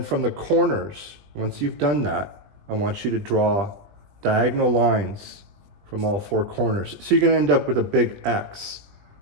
from the corners, once you've done that, I want you to draw diagonal lines from all 4 corners. So you're going to end up with a big X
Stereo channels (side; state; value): left; late; 20 ms